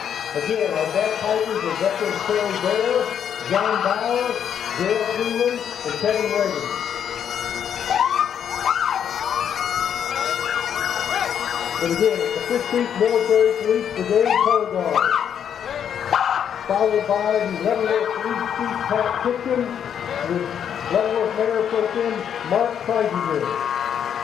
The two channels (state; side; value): quieter; right; 8.6 dB